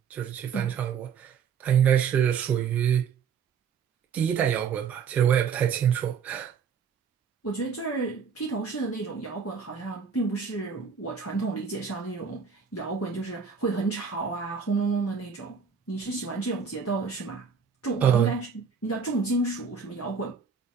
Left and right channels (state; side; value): quieter; left; 6.4 dB